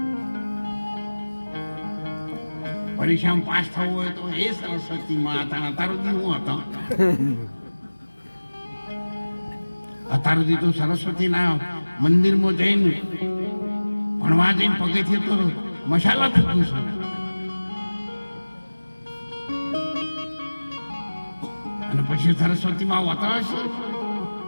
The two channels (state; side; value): inverted; both; correlation -1.00